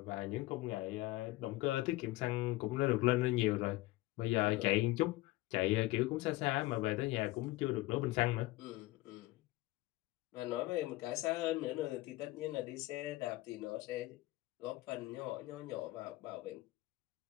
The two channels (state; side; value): quieter; right; 19.0 dB